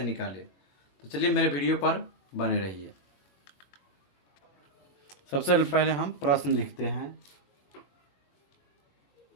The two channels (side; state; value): right; late; 21 ms